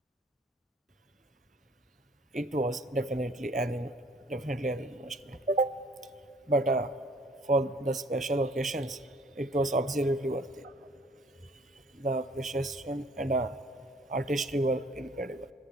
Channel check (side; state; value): both; normal; correlation 0.57